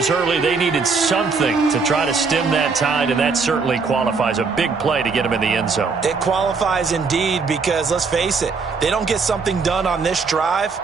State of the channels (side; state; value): left; quieter; 4.8 dB